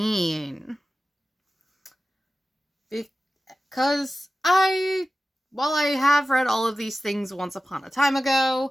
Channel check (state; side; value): normal; both; correlation 0.95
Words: Because while I have read all of these things once upon a time